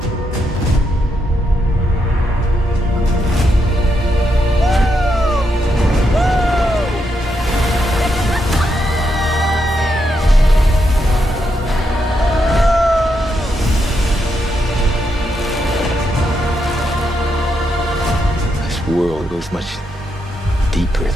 This world goes much deeper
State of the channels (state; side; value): normal; both; correlation 0.81